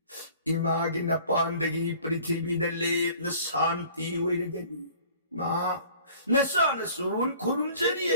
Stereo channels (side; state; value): both; inverted; correlation -0.50